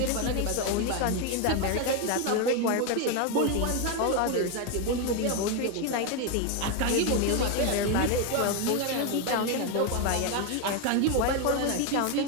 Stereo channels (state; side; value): different; both; correlation 0.02